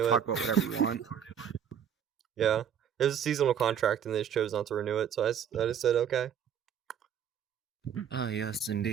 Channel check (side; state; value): left; quieter; 8.6 dB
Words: talk it. about whatever you want. Yeah, it was a seasonal contract, and they just chose not to renew it, so I just said, okay. Oh yes,